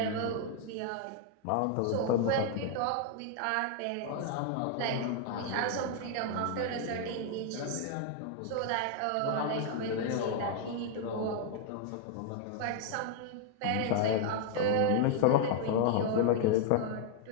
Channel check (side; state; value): both; different; correlation 0.00